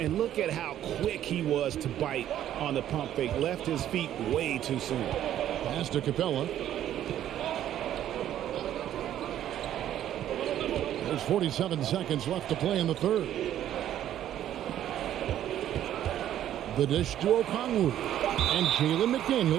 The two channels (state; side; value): quieter; left; 11.5 dB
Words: look at how quick he was to bite on the pump fake. Left his feet way too soon. Pass to Capella. There's 47 seconds left to play in the third. The dish to Okongwu. And Jalen